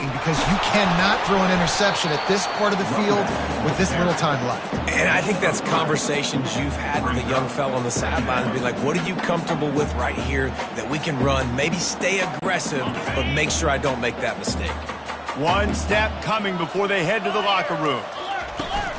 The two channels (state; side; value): identical; both; correlation 1.00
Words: because you cannot throw an interception at this part of the field with this little time left. And I think that's conversations you've had with a young fella on the sideline and be like, what are you comfortable with right here that we can run? Maybe stay aggressive, but make sure I don't make that mistake. One snap coming before they head to the locker room.